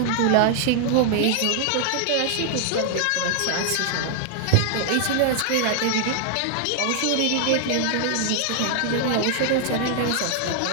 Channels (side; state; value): both; different; correlation 0.00